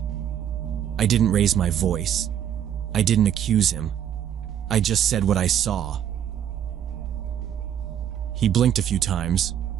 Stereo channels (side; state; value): left; quieter; 9.8 dB